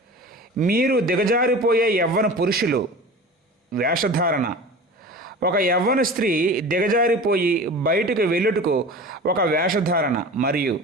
మీరు దిగజారిపోయే యవ్వన పురుషులు. వేషధారణ. ఒక యవ్వన స్త్రీ దిగజారిపోయి బయటకు వెళ్ళుటకు ఒక వేషధారణ. మరియు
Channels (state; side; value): normal; both; correlation 0.36